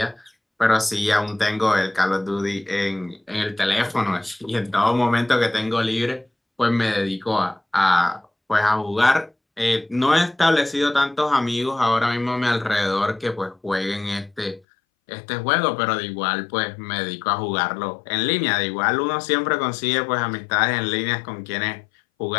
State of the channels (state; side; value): drops out; right; at 14.6 s